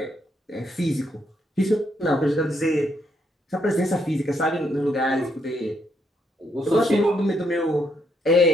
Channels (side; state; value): both; normal; correlation 0.75